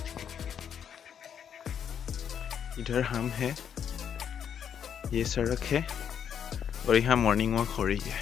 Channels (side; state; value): right; quieter; 8.3 dB